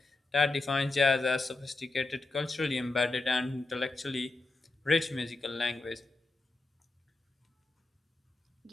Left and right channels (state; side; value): quieter; right; 3.3 dB